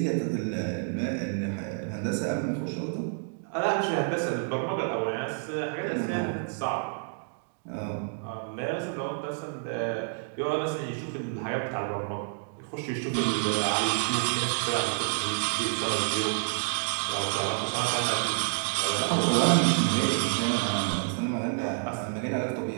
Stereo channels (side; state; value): left; silent; 59 dB below the other